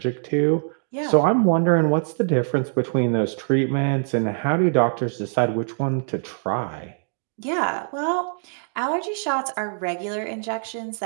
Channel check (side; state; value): left; silent; digital silence